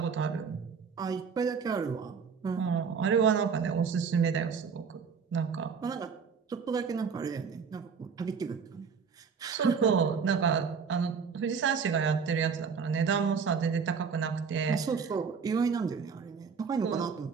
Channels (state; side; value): quieter; left; 6.0 dB